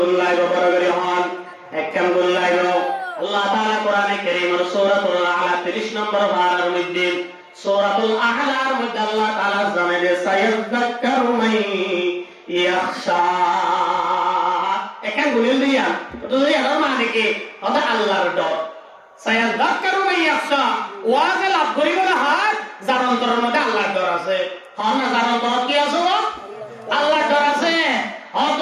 বড় করে হন একখান গুল্লাই আল্লাহ তাআলা কোরআনে কারীমের সূরাতুল আ'লা 30 নম্বর পারার মধ্যে সূরাতুল আ'লার মধ্যে আল্লাহ তাআলা জানায় সায়াযাক্কারু মান ইয়াখশা একখান গুলিল দিয়া তো এর মানে কি ওটা আল্লাহর ডর সায়াযাক্কারু মান ইয়াখশা ওয়াজ লাভ করিব না হাত যার অন্তরের মধ্যে আল্লাহর ডর আছে হন না যার অন্তরে কি আছে আল্লাহর ডর আছে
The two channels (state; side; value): identical; both; correlation 1.00